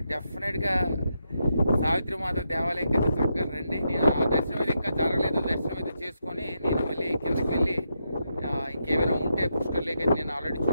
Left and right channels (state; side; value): inverted; both; correlation -0.83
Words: డెఫినెట్గా సావిత్రి మాత దేవాలయం కింద చక్కగా రండి. నేను ఆ దర్శనం అయితే ఇంకా జరగలేదు, దర్శనం అయితే చేసుకొని నేను మళ్ళీ కిందకి వెళ్ళి ఇంకేమైనా ఉంటే పుష్కర్ లేక్ అయితే నేను ఆల్రెడీ